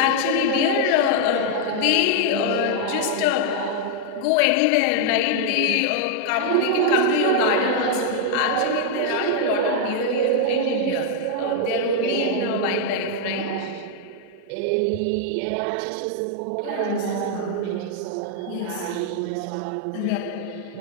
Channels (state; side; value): different; both; correlation 0.00